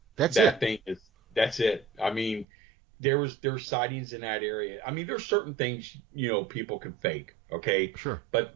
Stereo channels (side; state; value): left; drops out; at 2.5 s